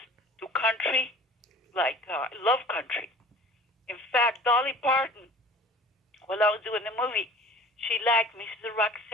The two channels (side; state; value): both; normal; correlation 0.45